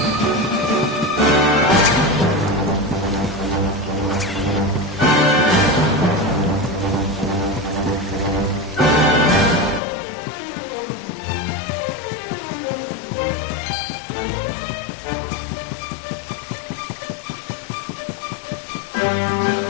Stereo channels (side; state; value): right; drops out; at 9.8 s